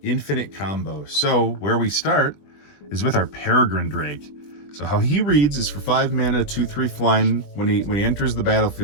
infinite combo. So where we start is with our Peregrine Drake. So how he reads is for 5 mana, 2/3 flying. When he enters the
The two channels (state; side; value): late; right; 20 ms